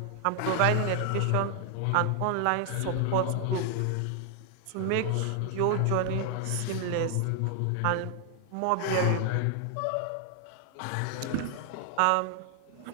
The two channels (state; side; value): different; both; correlation 0.00